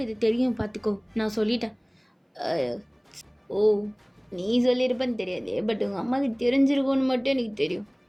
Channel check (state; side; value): identical; both; correlation 1.00